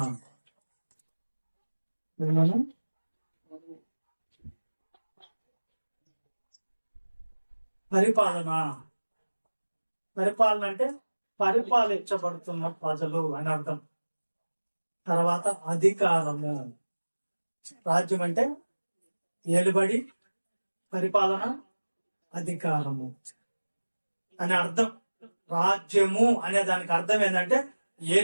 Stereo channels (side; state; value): both; inverted; correlation -1.00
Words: విన్నాను? పరిపాలన పరిపాలన అంటే పరిపాలించబడుతున్న ప్రజలు అని అర్థం. తర్వాత అధికారము. రాజ్యం అంటే ఏలుబడి, పరిపాలన, అధికారము అని అర్థం. రాజ్యము అనే దానికి అర్థం ఏంటంటే